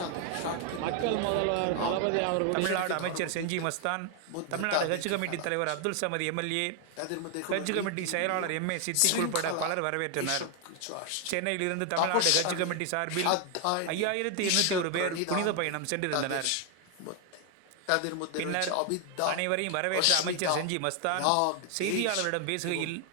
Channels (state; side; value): different; both; correlation 0.00